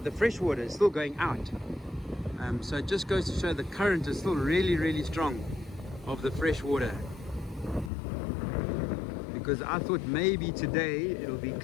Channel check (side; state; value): right; drops out; at 7.9 s